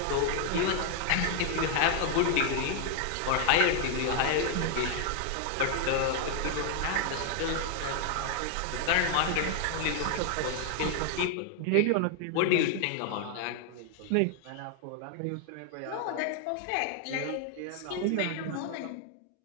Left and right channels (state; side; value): different; both; correlation 0.00